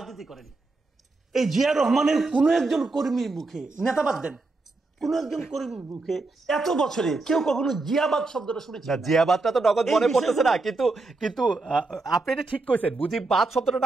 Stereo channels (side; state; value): left; quieter; 3.4 dB